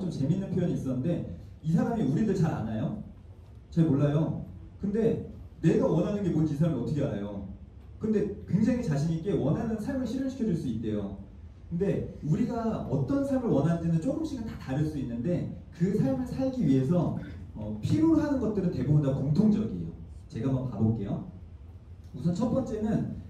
재밌는 표현이 있었는데 이 사람이 우리들 잘 아나요? 잘 몰라요. 근데 내가 원하는 게 뭔지 이 사람이 어떻게 알아요? 근데 굉장히 자신 있게 원하는 삶을 실현시켜 줄 수 있대요. 근데 우리가 어떤 삶을 원하는지는 조금씩은 다 다를 수 있는데 그 삶을 살기 위해서 필요로 하는 것들은 대부분 다 공통적이에요. 제가 한번 봐볼게요. 우선 첫 번째는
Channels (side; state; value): both; identical; correlation 1.00